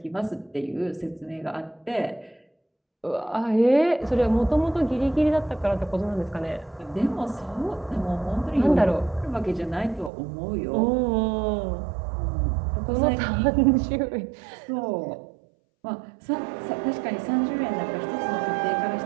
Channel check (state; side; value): drops out; left; at 10.1 s